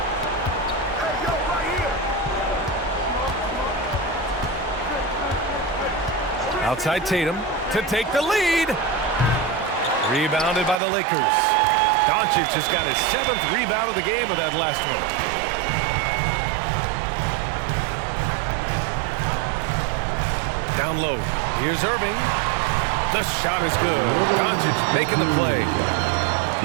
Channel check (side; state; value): left; drops out; at 10.8 s